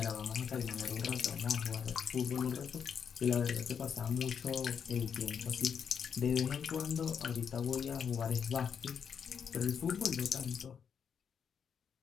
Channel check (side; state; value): right; quieter; 7.2 dB